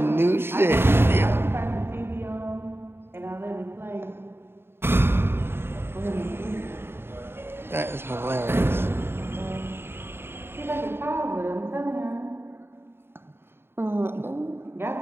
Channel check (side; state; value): left; late; 0.11 ms